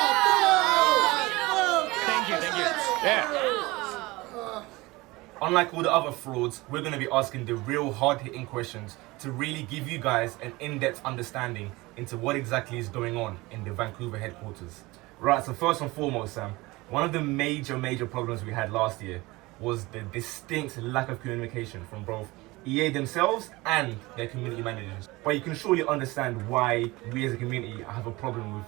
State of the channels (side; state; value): left; quieter; 21.6 dB